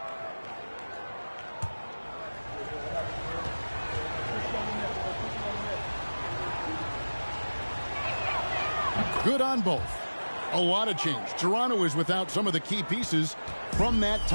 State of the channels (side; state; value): both; inverted; correlation -1.00